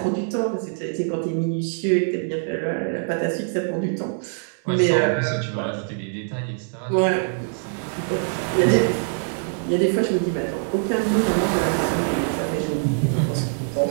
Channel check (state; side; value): silent; left; 63 dB below the other